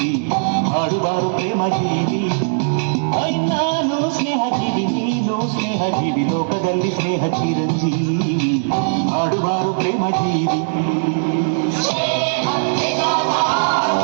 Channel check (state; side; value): silent; left; digital silence